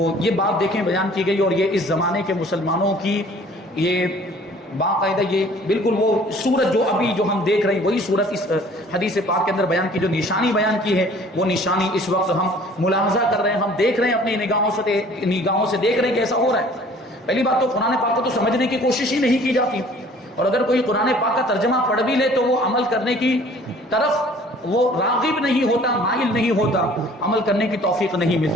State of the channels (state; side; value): normal; both; correlation 0.52